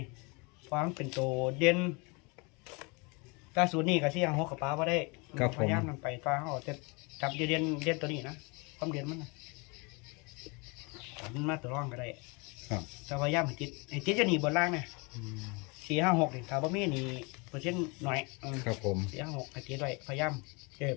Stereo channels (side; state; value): right; quieter; 29.5 dB